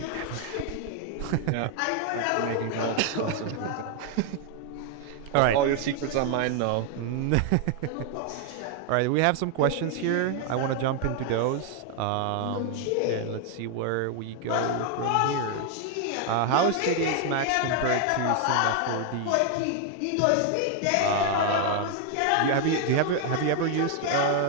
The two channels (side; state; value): both; different; correlation 0.00